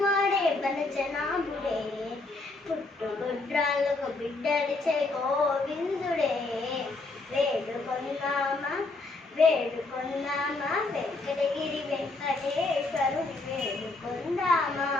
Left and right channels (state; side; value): quieter; right; 3.3 dB